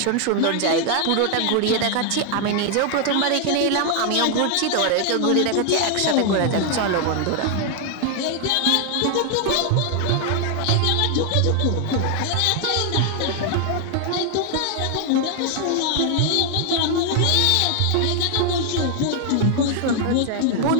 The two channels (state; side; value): different; both; correlation 0.00